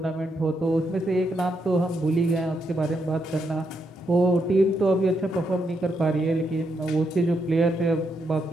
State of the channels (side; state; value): both; normal; correlation 0.80